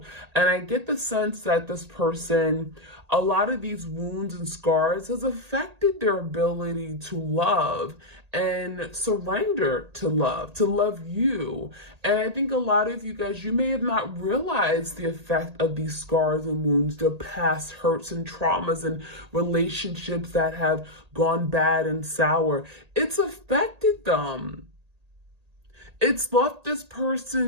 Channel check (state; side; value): late; left; 1.8 ms